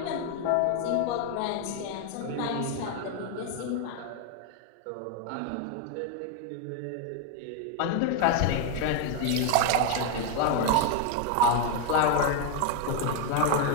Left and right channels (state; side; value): different; both; correlation 0.01